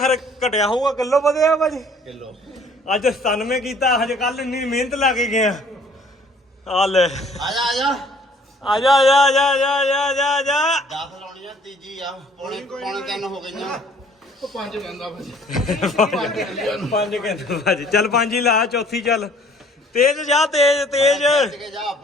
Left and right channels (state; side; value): normal; both; correlation 0.57